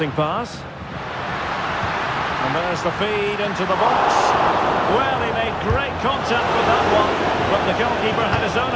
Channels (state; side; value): identical; both; correlation 1.00